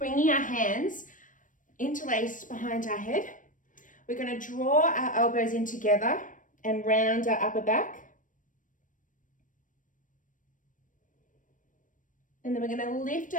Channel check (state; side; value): late; right; 0.38 ms